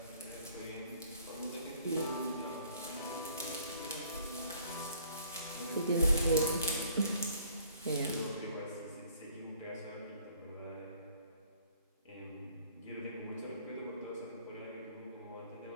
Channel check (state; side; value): inverted; both; correlation -0.58